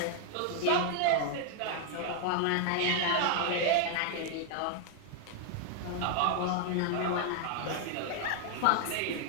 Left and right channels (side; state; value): both; different; correlation 0.00